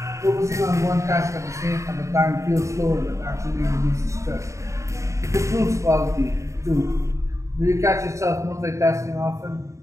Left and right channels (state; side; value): late; left; 0.15 ms